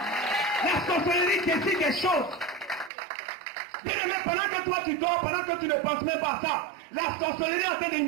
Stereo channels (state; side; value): drops out; left; at 2.9 s